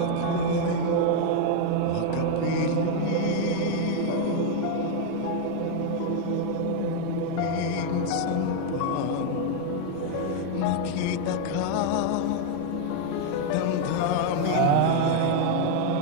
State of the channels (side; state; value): both; different; correlation 0.01